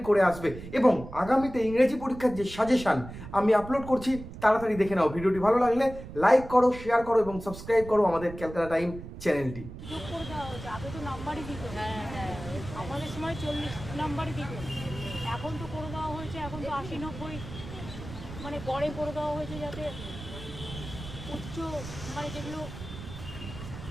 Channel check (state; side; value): noise; right; rumble, 12 dB below the sound